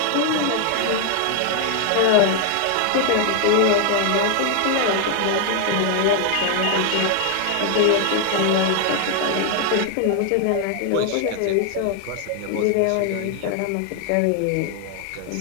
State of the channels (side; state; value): both; different; correlation 0.00